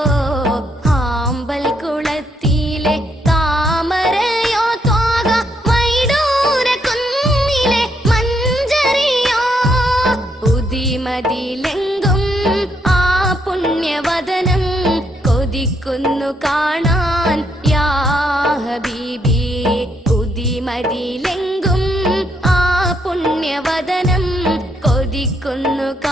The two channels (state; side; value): normal; both; correlation 0.75